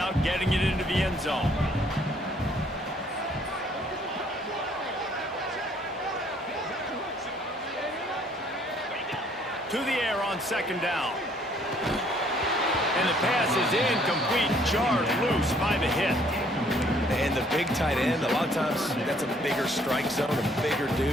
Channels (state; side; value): normal; both; correlation 0.63